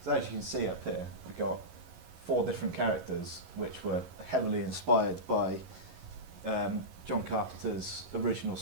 So as you can see up here, we've got 4 different characters which were heavily inspired by John Carpenter's original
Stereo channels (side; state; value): left; late; 11 ms